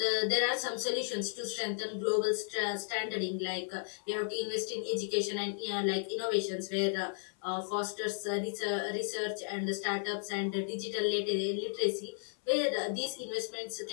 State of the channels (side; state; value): right; silent; 55 dB below the other